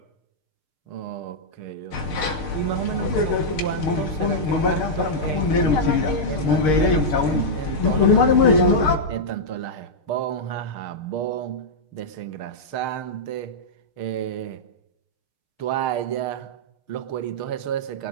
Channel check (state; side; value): late; right; 6.5 ms